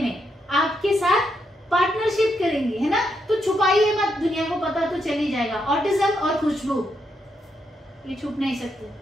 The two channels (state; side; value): normal; both; correlation 0.80